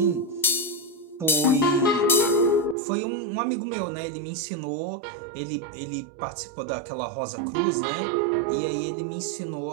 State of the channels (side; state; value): left; drops out; at 2.8 s